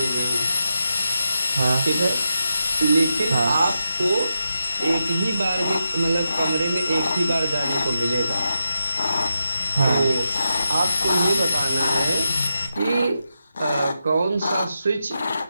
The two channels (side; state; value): both; inverted; correlation -0.86